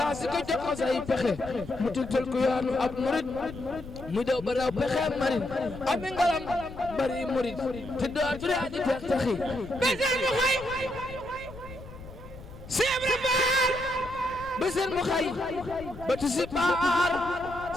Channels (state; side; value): noise; left; rumble, 15 dB below the sound